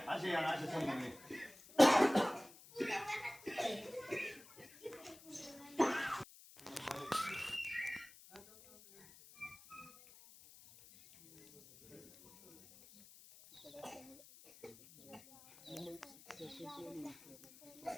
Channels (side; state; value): left; noise; hiss, 20 dB below the sound